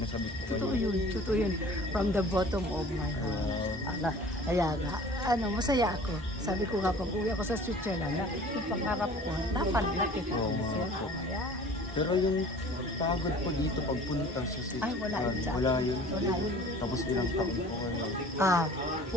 sabik po kayo. Totoo yun. From the bottom of my heart. Kaya nga, masaya ako. Sabi ko nga, pag uwi ako sa Switzerland, yung pangarap ko, dapat nakita ko siya. Pero yung pagod po dito pagpunta sa Switzerland, wala yun. Tapos ilang taon po kayo?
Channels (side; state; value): both; normal; correlation 0.46